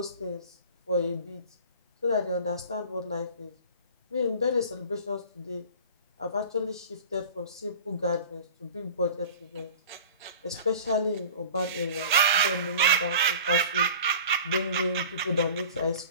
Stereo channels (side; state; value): both; inverted; correlation -0.41